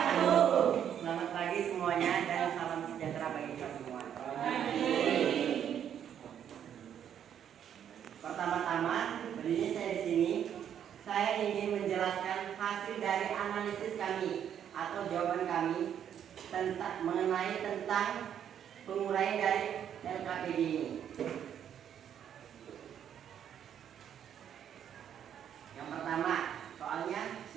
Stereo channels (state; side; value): quieter; left; 9.3 dB